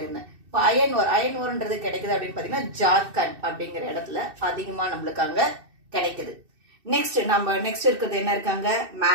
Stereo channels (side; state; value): left; late; 2.6 ms